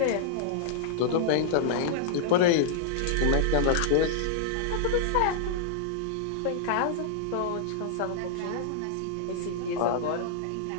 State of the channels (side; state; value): both; different; correlation -0.01